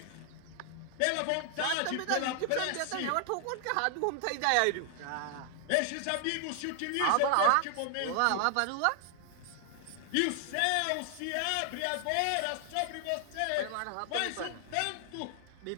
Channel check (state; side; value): different; both; correlation 0.00